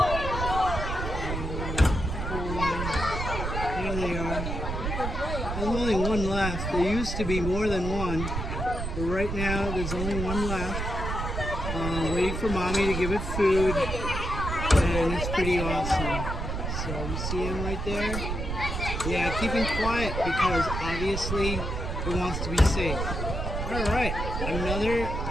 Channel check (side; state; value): right; noise; rumble, 3 dB below the sound